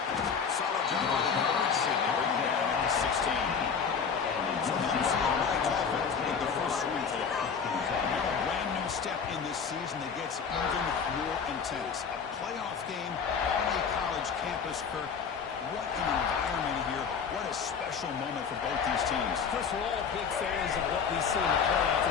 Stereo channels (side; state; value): right; quieter; 6.2 dB